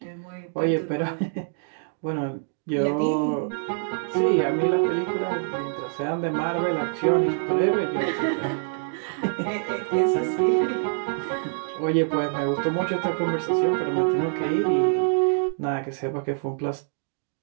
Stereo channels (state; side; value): silent; left; digital silence